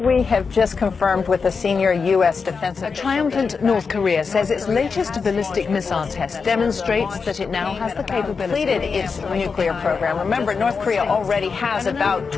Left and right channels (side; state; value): right; quieter; 5.2 dB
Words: We have just confirmed with a senior U.S. defense official. Triumphant North Korea says its latest ballistic missile test demonstrates that it now has the capability completed its nuclear program. Remember, North Korea already has about